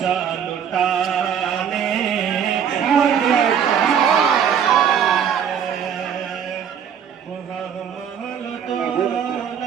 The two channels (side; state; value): left; quieter; 8.1 dB